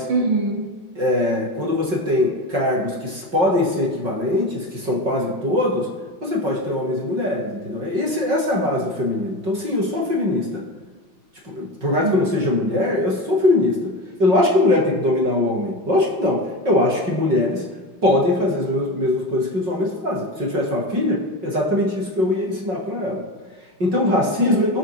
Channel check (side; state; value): left; late; 5.4 ms